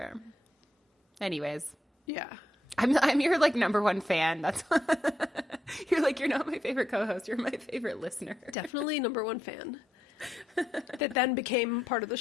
Anyways, Yeah. I'm your like number one fan. That's you're like, you're not my favorite co-host. You're my favorite listener. Definitely number one fan. That then became part of the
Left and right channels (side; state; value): both; normal; correlation 0.81